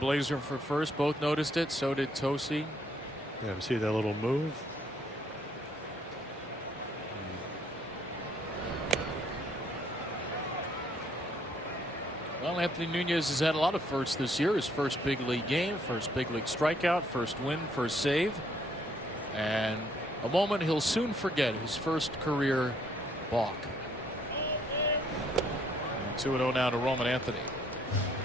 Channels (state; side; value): normal; both; correlation 0.67